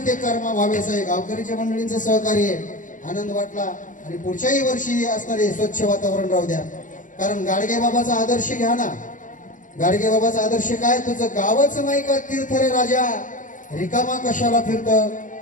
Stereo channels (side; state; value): right; late; 0.38 ms